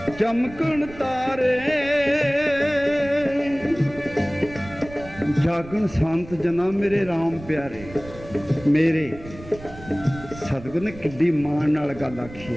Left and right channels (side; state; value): right; noise; rumble, 17 dB below the sound